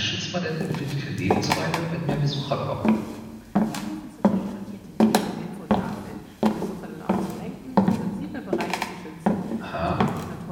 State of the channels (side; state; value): both; identical; correlation 1.00